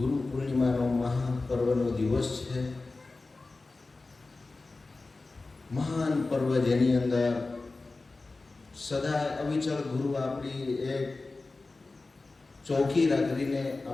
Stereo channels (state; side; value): quieter; right; 3.5 dB